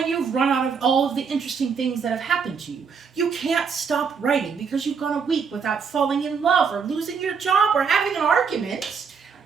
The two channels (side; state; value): left; quieter; 6.0 dB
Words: you've run out of all of the interesting things that have happened to you? You can't stop writing because you've gone a week without falling in love or losing your job or having an argument.